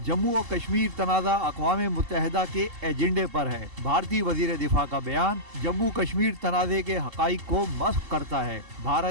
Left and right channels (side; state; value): left; late; 2.7 ms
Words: जम्मू और कश्मीर तनाज़ा अक़वाम मुत्तहिदा के एजेंडे पर है। भारतीय वजीर दिफा का बयान जम्मू कश्मीर तनाज़े के हक़ाइक़ को मस्ख़ करता है।